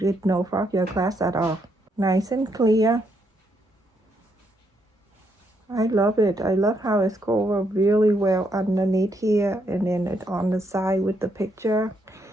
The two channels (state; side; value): normal; both; correlation 0.76